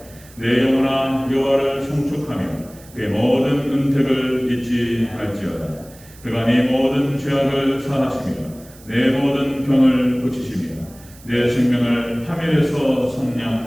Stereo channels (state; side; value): noise; right; hiss, 23 dB below the sound